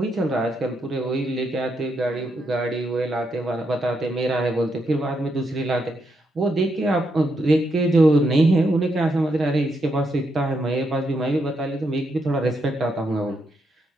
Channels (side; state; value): both; normal; correlation 0.80